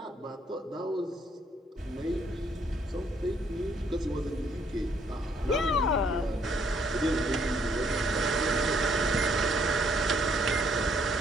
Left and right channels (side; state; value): both; normal; correlation 0.68